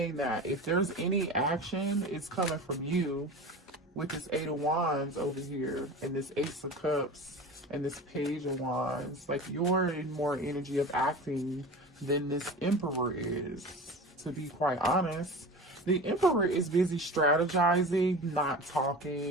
that. If there's any action, it's coming from you with this Eight of Wands over here and this Ace of Cups and this Page of Wands. Like you're in more energy of acting than this Emperor is, to be quite honest. The Emperor is busy strategizing, not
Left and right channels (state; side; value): normal; both; correlation 0.33